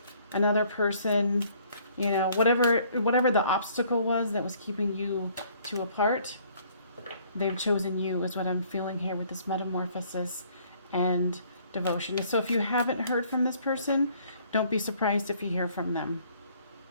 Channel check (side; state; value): both; inverted; correlation -0.60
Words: another person, you know, whatever the obstacle was that was keeping you two apart, they've chosen you is what I'm feeling here with this metamorphosis and devotion. So if you haven't heard from this person, don't be surprised if you hear from them.